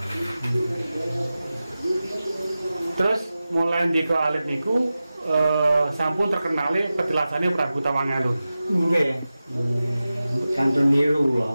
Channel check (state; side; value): inverted; both; correlation -0.94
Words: Terus mulai ndika alit niku sampun terkenale petilasannya Prabu Tawangalun. Nggih. Santun niru